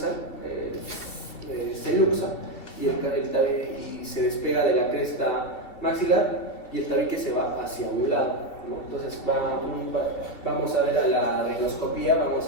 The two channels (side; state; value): right; late; 2.6 ms